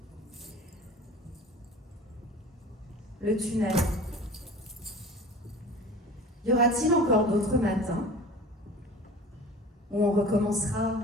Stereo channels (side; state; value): both; normal; correlation 0.40